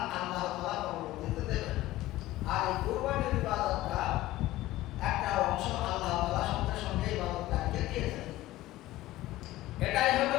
আল্লাহ তাআলা পরবর্তীতে দেবেন। আর এই কুরবানির ইবাদতটা একটা অংশ আল্লাহ তাআলা সঙ্গে সঙ্গে ইবাদতকারীকে দিয়েছেন। এটাই হলো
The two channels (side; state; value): right; quieter; 16.2 dB